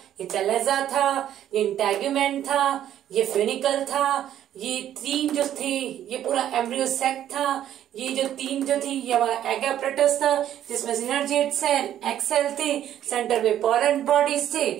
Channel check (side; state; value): left; quieter; 11.2 dB